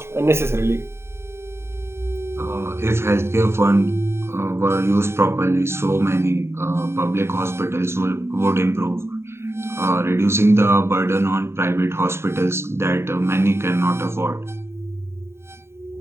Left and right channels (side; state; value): left; late; 0.12 ms